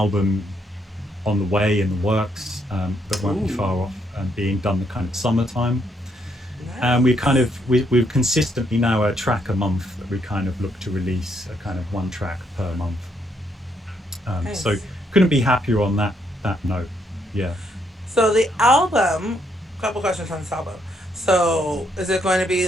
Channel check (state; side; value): normal; both; correlation 0.74